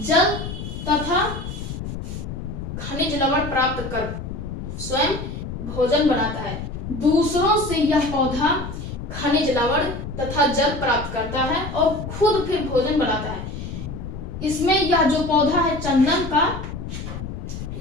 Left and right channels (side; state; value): left; noise; rumble, 7 dB below the sound